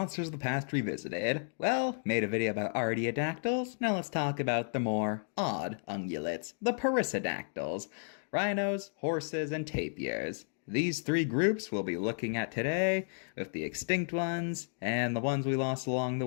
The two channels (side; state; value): right; silent; digital silence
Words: of the Past Revisited. Well, made a video about artiodactyls, now let's talk about the more odd ungulates, the perissodactyls, rhinos, horses, and tapirs. These three groups we'll be looking at today, with the extinct ones, and the ones we lost along the